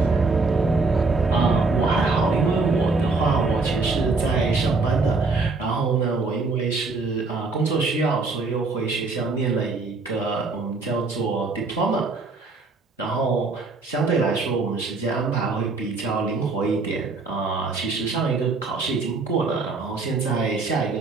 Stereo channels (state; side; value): quieter; left; 3.9 dB